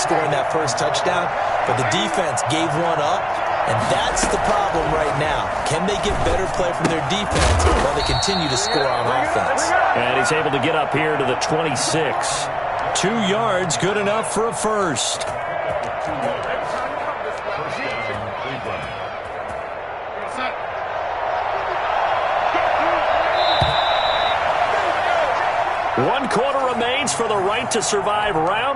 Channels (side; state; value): both; identical; correlation 1.00